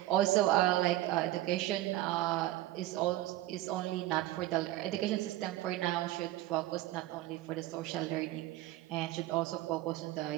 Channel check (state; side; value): quieter; left; 15.8 dB